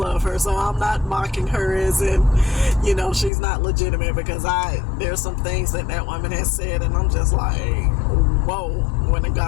her, so I'm not mocking her as in, she's not legitimate, because there's some things that woman has said, and I'm just like, whoa when a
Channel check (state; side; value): drops out; right; at 3.3 s